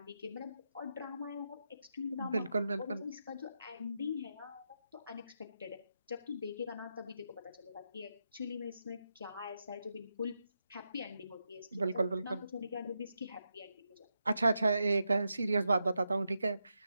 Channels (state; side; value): inverted; both; correlation -0.85